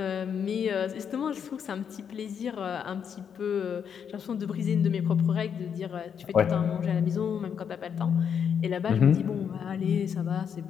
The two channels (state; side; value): quieter; right; 7.6 dB